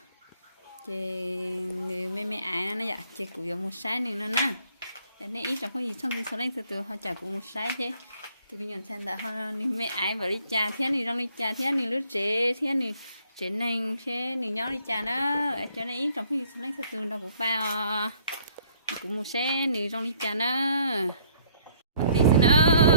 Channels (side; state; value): both; inverted; correlation -0.63